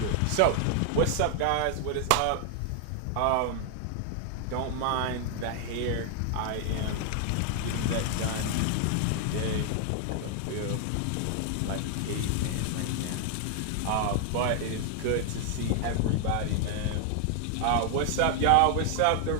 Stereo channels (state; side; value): different; both; correlation 0.00